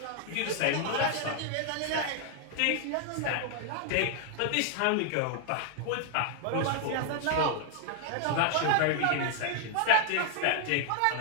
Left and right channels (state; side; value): different; both; correlation 0.00